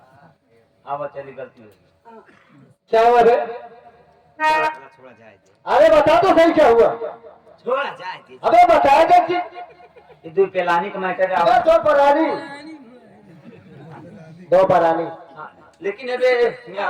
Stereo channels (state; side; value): identical; both; correlation 1.00